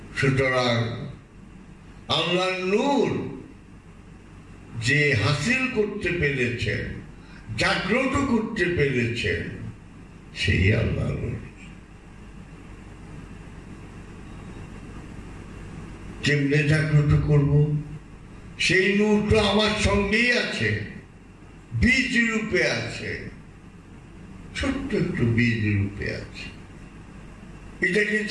সুতরাং আল্লাহ নূর যে হাসিল করতে পেরেছেন, জাগ্রত করতে পেরেছেন, সেই আল্লাহ নূর। কেমনে জাগ্রত করব? সেই নূর তো আমার সঙ্গেই আছে, বীজ রূপে আছে, ছোট্ট একটু বীজ রূপে আছে। এটাকে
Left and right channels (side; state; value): both; identical; correlation 1.00